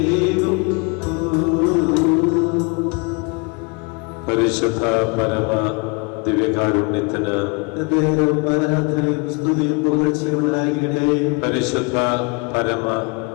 പരിശുദ്ധ പരമ ദിവ്യകാരുണ്യത്തിന് ആരാധനയും സ്തുതിയും പുകഴ്ചയുണ്ടാകട്ടെ. പരിശുദ്ധ പരമ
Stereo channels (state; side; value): quieter; right; 31.5 dB